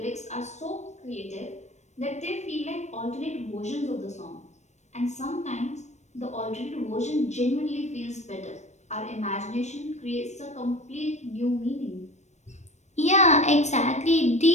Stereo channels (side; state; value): right; late; 0.34 ms